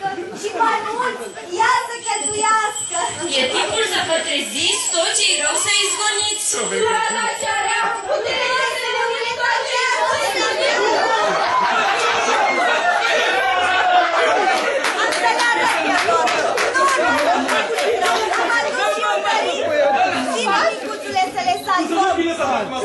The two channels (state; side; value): identical; both; correlation 1.00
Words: și mai mult, ea să cheltuiască. E timpul să vă treziți, tot ce-i rău să izgoniți. Surata cea rea, puterea să ne întoarcească. Asta la răpiator. Nu, am adus și un părit. Vino, micuțule, să le salvăm.